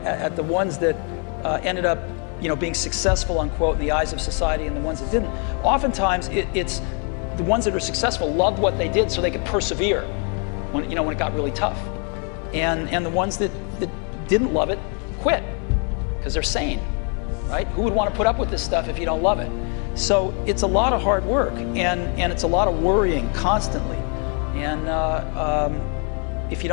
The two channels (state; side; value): quieter; right; 39.6 dB